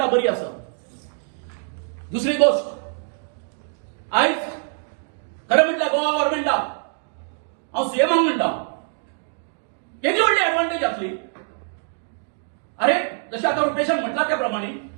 बरी आसा. दुसरी गोष्ट आयज खरें म्हटल्यार गोवा गव्हर्नमेंटाक हांव सीएमाक म्हणटा केदी व्हडली एडवांटेज जातली. अरे जशें आतां रुपेशान म्हटला त्या प्रमाणे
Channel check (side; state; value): left; silent; 58 dB below the other